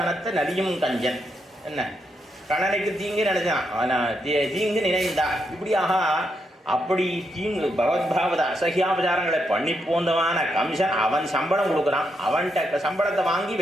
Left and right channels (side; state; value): both; normal; correlation 0.81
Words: நலியும் கஞ்சன். என்ன கணனைக்கு தீங்கு நினைச்சான், தீங்கு நினைந்தான். இப்படியாக அப்படி தீங்கு பகவத்பாவத அசகியாபச்சாரங்களை பண்ணி போந்தவான கம்சன் அவன் சம்பளம் கொடுக்குறான். அவன்கிட்ட சம்பளத்தை வாங்கி